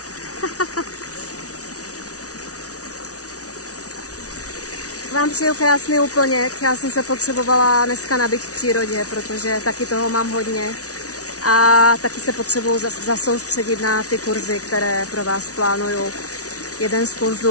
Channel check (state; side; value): late; right; 0.67 ms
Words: Vám přeju krásný úplněk. Já jsem se potřebovala dneska nabít v přírodě, protože taky toho mám hodně. A taky se potřebuju zasoustředit na ty kurzy, které pro vás plánuju. Jeden z